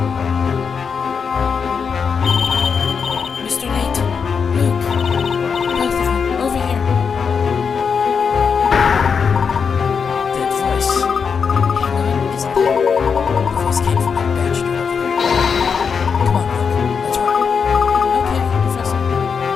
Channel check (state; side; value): quieter; right; 6.1 dB